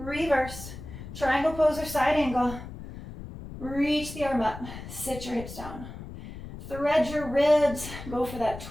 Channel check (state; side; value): noise; left; rumble, 12 dB below the sound